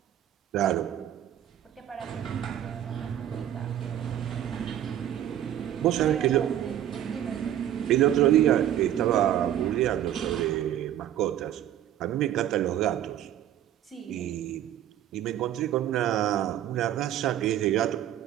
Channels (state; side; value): quieter; left; 11.4 dB